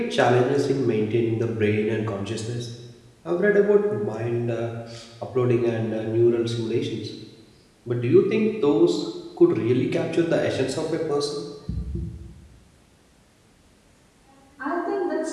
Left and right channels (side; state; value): both; identical; correlation 1.00